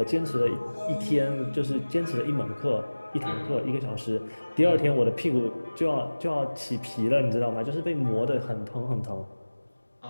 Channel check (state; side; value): inverted; both; correlation -1.00